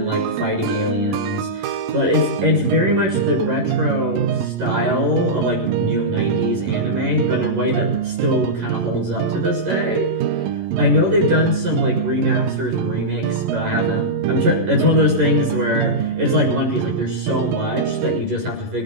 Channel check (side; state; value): left; late; 11 ms